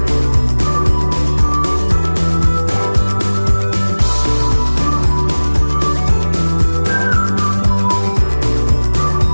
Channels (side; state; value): both; inverted; correlation -1.00